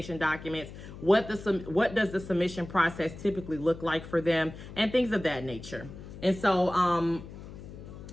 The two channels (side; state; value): left; noise; hum, 14 dB below the sound